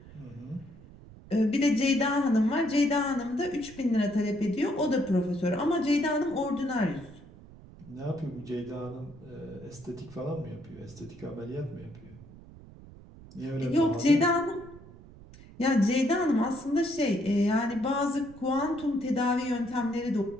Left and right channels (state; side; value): noise; right; rumble, 20 dB below the sound